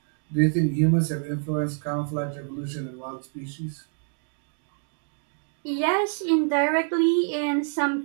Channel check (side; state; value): left; silent; 56 dB below the other